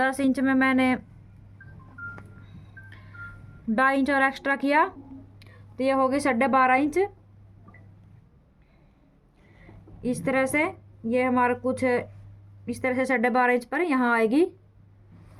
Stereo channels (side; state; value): both; identical; correlation 1.00